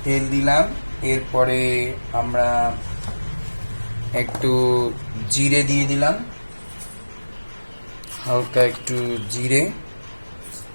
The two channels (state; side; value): inverted; both; correlation -1.00